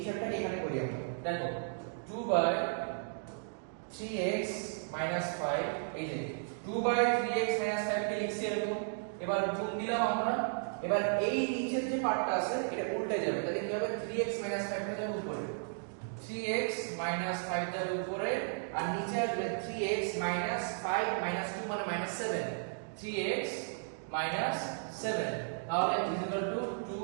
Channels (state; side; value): silent; left; digital silence